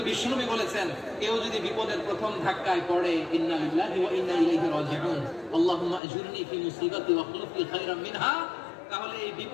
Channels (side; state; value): right; drops out; at 6.0 s